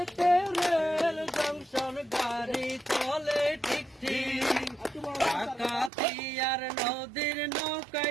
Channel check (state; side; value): drops out; left; at 5.9 s